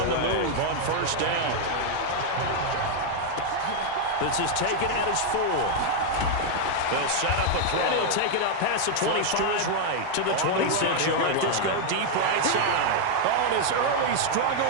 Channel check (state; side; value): different; both; correlation 0.00